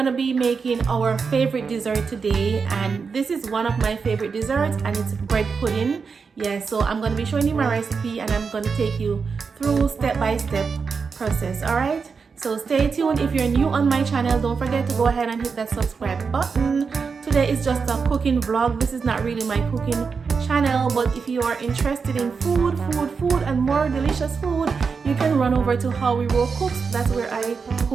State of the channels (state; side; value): quieter; left; 5.3 dB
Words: be making our favorite dessert today, and this is one of my favorite desserts, and it's bread pudding. Yeah, so I'm gonna be showing you my recipe, and I'm gonna take you through step-by-step process. All right, so stay tuned. If you're new on my channel, don't forget to go ahead and hit that subscribe button. Today is just a cooking vlog. This is not really my cooking channel, but if you are interested in food and more delicious food, you can run over to howwerowe cooks. That's where I